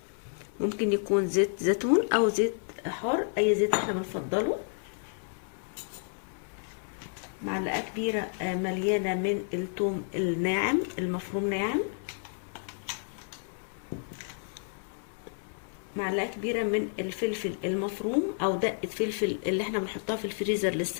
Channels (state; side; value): silent; right; 57 dB below the other